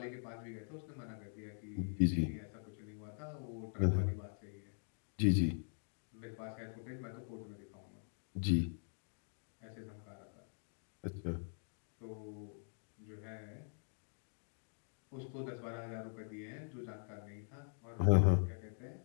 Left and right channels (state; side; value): silent; right; digital silence